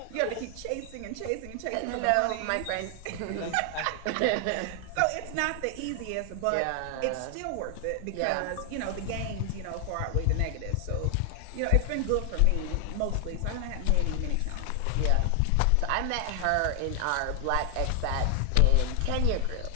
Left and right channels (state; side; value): different; both; correlation 0.00